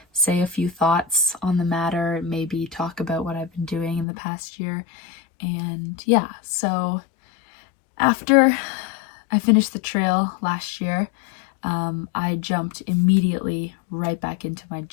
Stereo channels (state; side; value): drops out; right; at 4.0 s